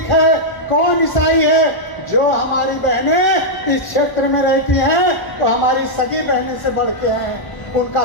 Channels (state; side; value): late; right; 1.0 ms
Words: है, कौन ईसाई है. जो हमारी बहनें इस क्षेत्र में रहती हैं तो हमारी सगी बहनें से बढ़ के हैं. उनका